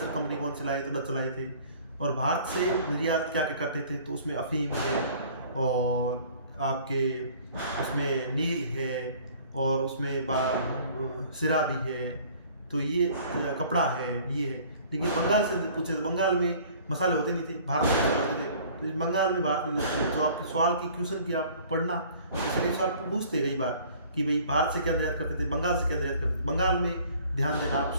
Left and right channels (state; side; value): inverted; both; correlation -0.51